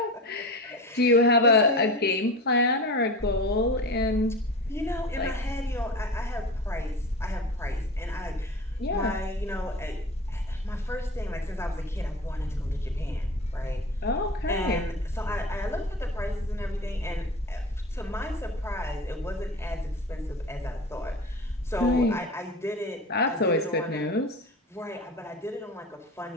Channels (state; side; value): normal; both; correlation 0.31